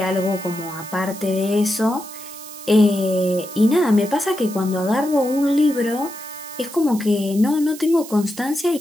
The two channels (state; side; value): noise; right; hiss, 15 dB below the sound